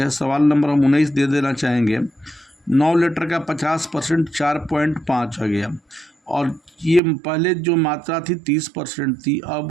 सवाल नंबर हम 19 दे देना चाहेंगे। 9 लीटर का 50% 4.5 आ गया, और ये पहले जो मात्रा थी 30% थी,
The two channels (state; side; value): drops out; left; at 7.0 s